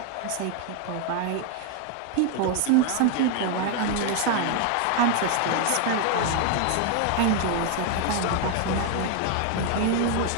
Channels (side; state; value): both; different; correlation 0.00